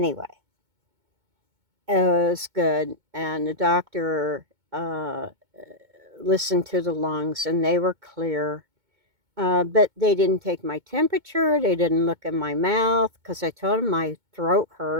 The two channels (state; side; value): late; left; 2.2 ms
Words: it was good, and the doctor listened to the lungs, and they were clear. But they didn't take my temperature. They didn't look in my mouth because I told them my throat